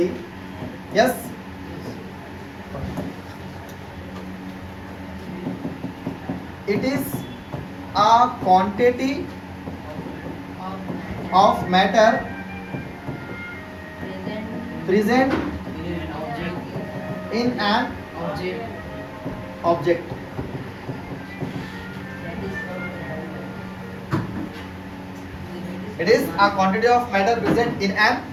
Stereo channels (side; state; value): both; identical; correlation 1.00